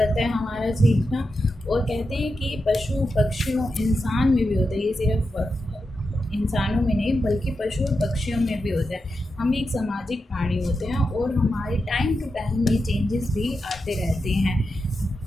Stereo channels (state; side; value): normal; both; correlation 0.88